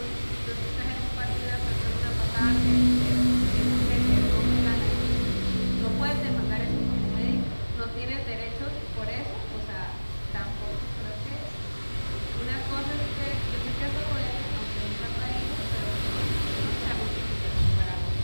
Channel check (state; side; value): inverted; both; correlation -1.00